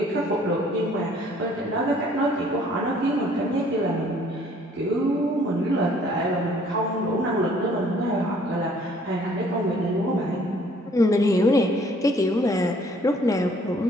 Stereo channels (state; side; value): normal; both; correlation 0.59